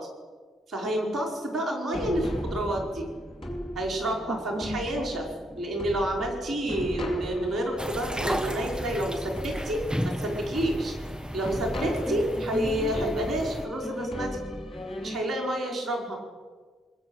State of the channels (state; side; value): normal; both; correlation 0.73